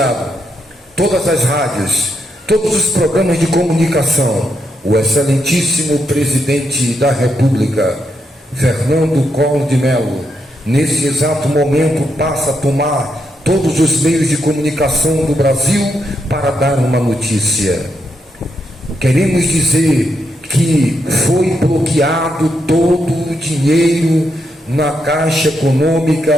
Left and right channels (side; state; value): both; normal; correlation 0.81